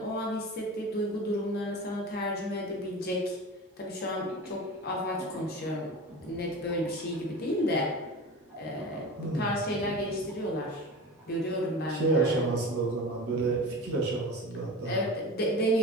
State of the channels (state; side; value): normal; both; correlation 0.32